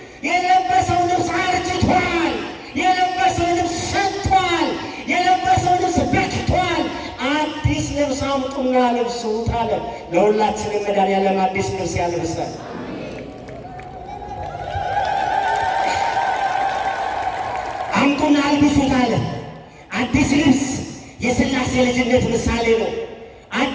የለበሰው ልብስ አርጅቷል፣ የለበሰው ልብስ ሸቷል፣ የለበሰው ልብስ በክቷል፣ አዲስ ልብስ አምጡና ልብሱት አለ። ለሁላችንም መድኃኒዓለም አዲስ ልብስ ያልብሰን። አምጡና አልብሱት አለ። አዲስ ልብስ የሥላሴ ልጅነት ምሳሌ ነው።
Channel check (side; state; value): both; identical; correlation 1.00